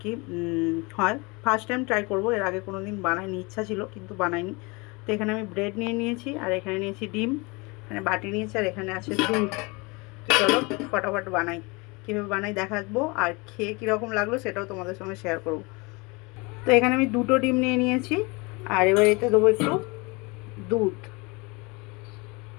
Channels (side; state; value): right; quieter; 27.0 dB